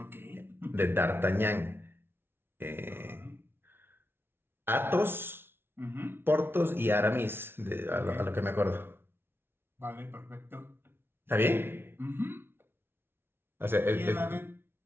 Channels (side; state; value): left; late; 0.11 ms